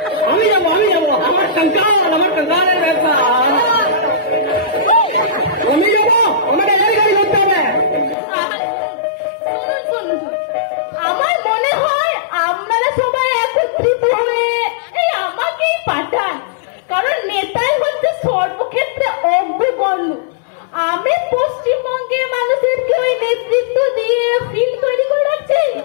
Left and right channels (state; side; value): drops out; right; at 8.2 s